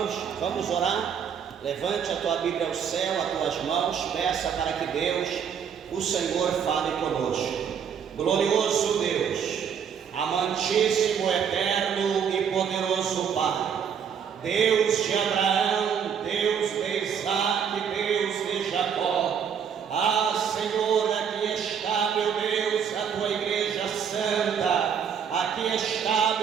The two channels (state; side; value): quieter; left; 7.6 dB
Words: Vamos orar. Levante a tua Bíblia ao céu, as tuas mãos, peça para que Deus, o Senhor, fale conosco. Glorioso Deus, amantíssimo, eterno e poderoso Pai, Deus de Abraão, Deus de Isaac, Deus de Jacó. Senhor, aqui está, meu Deus, a tua igreja santa. Aqui está,